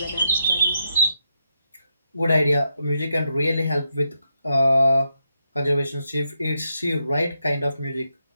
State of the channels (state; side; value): inverted; both; correlation -0.83